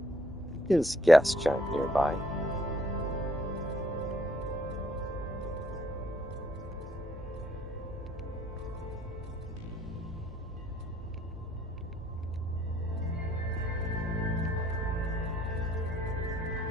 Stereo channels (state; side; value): normal; both; correlation 0.66